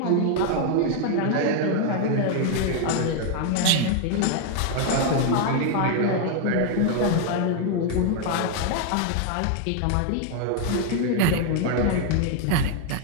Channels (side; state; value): both; different; correlation 0.00